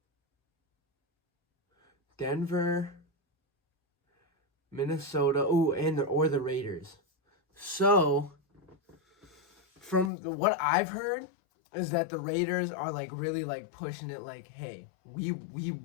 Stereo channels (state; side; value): drops out; right; at 10.1 s